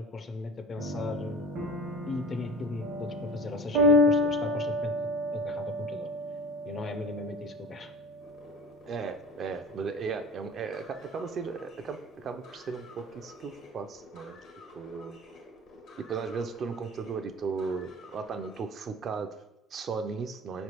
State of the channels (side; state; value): both; normal; correlation 0.38